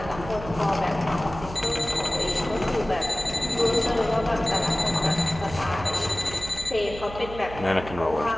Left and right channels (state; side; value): noise; right; hum, 12 dB below the sound